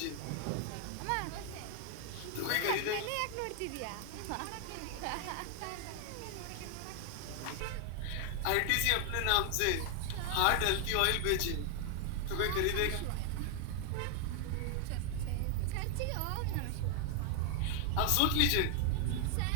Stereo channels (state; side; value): different; both; correlation 0.00